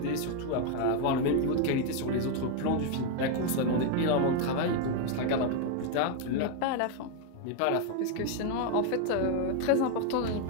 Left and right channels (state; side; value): different; both; correlation 0.01